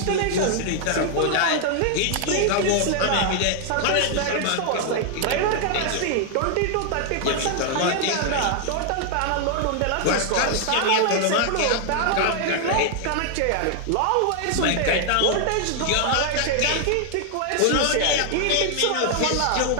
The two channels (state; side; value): different; both; correlation 0.00